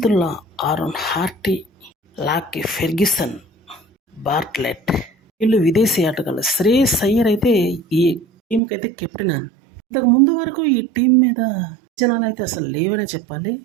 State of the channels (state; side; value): drops out; left; at 8.6 s